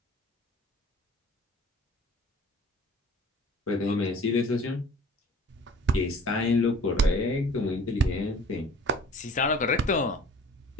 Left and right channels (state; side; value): normal; both; correlation 0.48